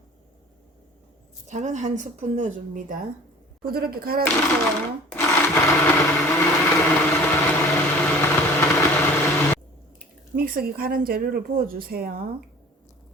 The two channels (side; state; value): both; normal; correlation 0.45